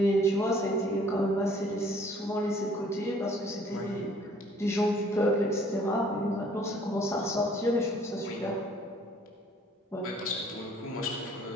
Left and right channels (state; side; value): normal; both; correlation 0.57